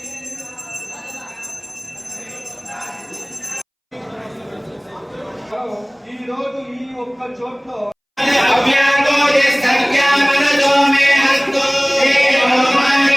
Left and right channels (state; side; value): identical; both; correlation 1.00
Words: ఈ రోజు ఈ ఒక్క చోట్లో